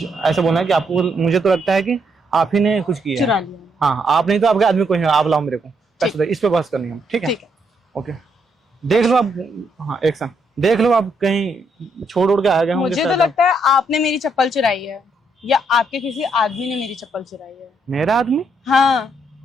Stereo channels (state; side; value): normal; both; correlation 0.75